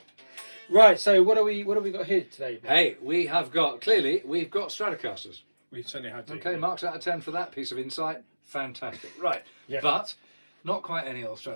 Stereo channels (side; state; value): both; inverted; correlation -1.00